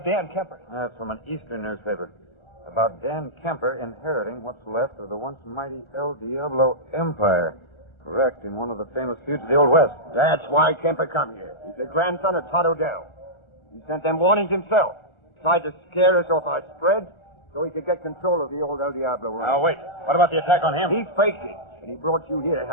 Dan Kemper. That's from an Eastern newspaper. About Dan Kemper inheriting what's left of the once mighty El Diablo Empire. Wrecked in one of the famous feuds of the Old West. That's why Kemper come here. He's the grandson of Todd Odell. He sent them warnings himself. Tried to scare us off our spread so he could get control of the old El Diablo ranch. Now, wait. What about the attack on him? He faked it, and he brought you here to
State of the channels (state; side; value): late; right; 1.4 ms